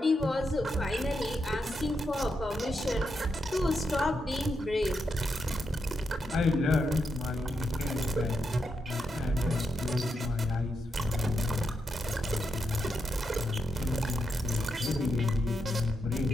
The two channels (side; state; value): both; normal; correlation 0.84